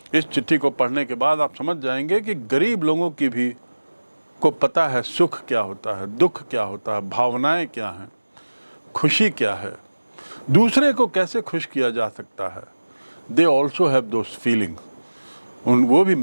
इस चिट्ठी को पढ़ने के बाद आप समझ जाएंगे कि गरीब लोगों की भी को पता है सुख क्या होता है, दुख क्या होता है, भावनाएं क्या हैं, खुशी क्या है, दूसरे को कैसे खुश किया जा सकता है. They also have those feeling. वो भी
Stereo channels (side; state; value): both; inverted; correlation -1.00